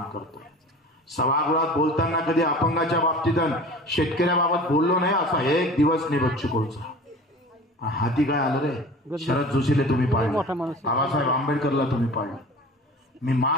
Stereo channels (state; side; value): normal; both; correlation 0.39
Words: करतोय. सभागृहात बोलताना कधी अपंगाच्या बाबतीत शेतकऱ्याबाबत बोललो नाही असा एक दिवस नाही बच्चू कडूचा. हाती काय आलं रे, शरद जोशीले तुम्ही पाहिलं, बाबासाहेब आंबेडकरला तुम्ही पाहिलं. मी